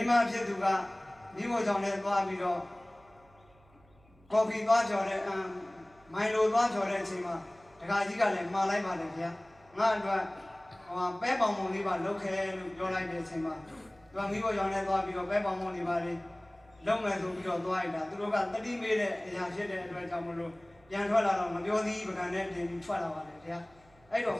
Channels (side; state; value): right; noise; hum, 29 dB below the sound